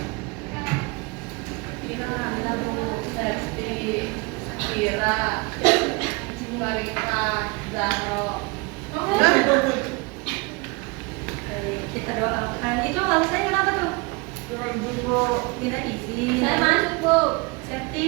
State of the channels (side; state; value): left; quieter; 27.4 dB